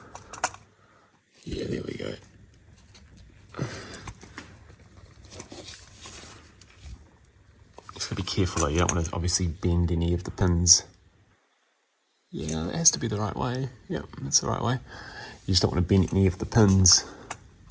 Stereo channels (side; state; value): both; identical; correlation 1.00